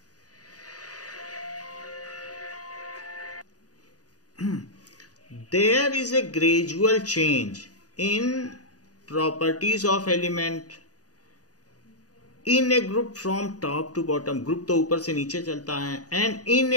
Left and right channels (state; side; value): late; right; 0.68 ms